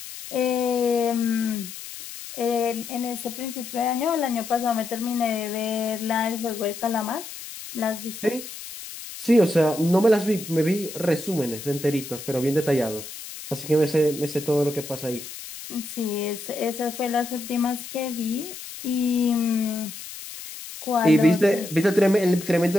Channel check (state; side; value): noise; left; hiss, 12 dB below the sound